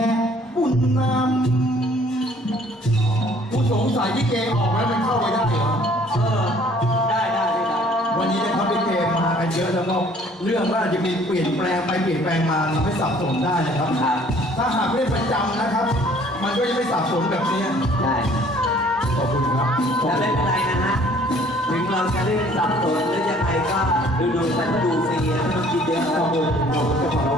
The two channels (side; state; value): both; normal; correlation 0.57